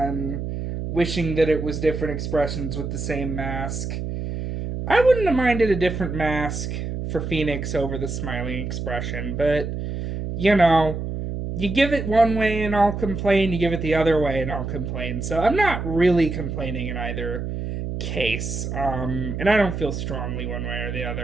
wishing that it was different expressions with the same mask, I wouldn't have minded a different mask for Phoenix over the smiling expression, but, you give it one way and I'll complain, you give it the other way and I'll complain. So I'm not really complaining in either case. And I don't feel strongly one way or the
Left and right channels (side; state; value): right; noise; hum, 4 dB below the sound